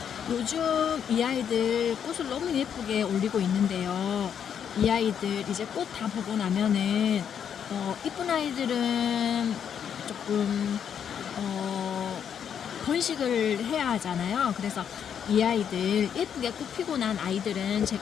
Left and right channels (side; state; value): right; quieter; 8.2 dB